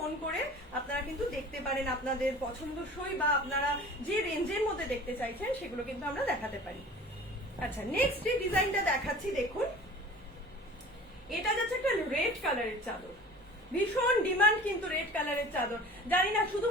করে আপনারা কিন্তু দেখতে পারেন আপনাদের পছন্দসই বা আপনারা যে রেঞ্জের মধ্যে দেখতে চাইছেন সেগুলো কিন্তু আমরা দেখাতে পারি। আচ্ছা, নেক্সট যে ডিজাইনটা দেখাচ্ছি দেখুন, এটা যাচ্ছে একটা রেড কালারের চাদর, ভীষণ ডিমান্ড কিন্তু রেড কালারের চাদর। জানি না,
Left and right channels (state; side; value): normal; both; correlation 0.42